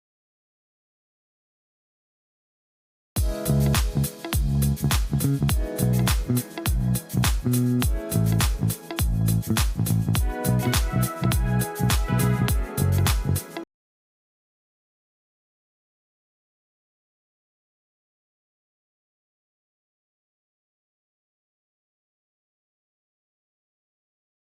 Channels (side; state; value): both; identical; correlation 1.00